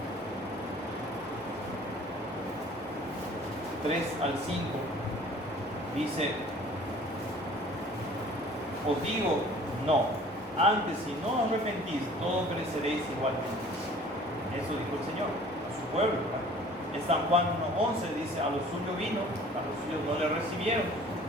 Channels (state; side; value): normal; both; correlation 0.50